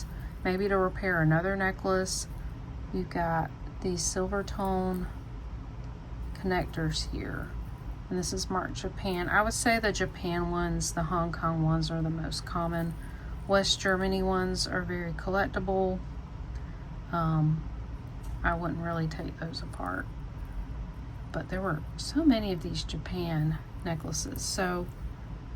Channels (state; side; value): identical; both; correlation 1.00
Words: Maybe to repair another necklace, you've got these silver tone connectors here. And this is marked Japan. I would say the Japan ones, the Hong Kong ones are the most common. West Germany ones are very collectible. I wouldn't really take those apart. But there were so many of these Japan necklaces. So